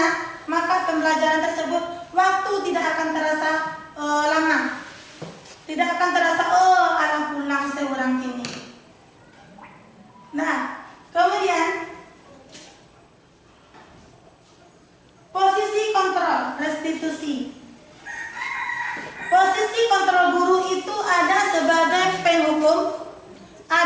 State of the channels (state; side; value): identical; both; correlation 1.00